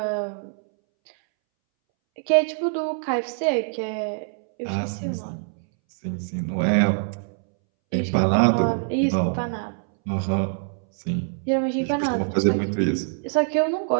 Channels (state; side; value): silent; left; 62 dB below the other